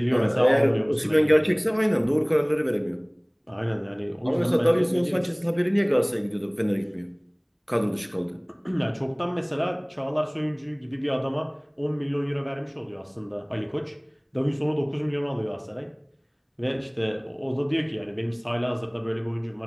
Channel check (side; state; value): both; identical; correlation 1.00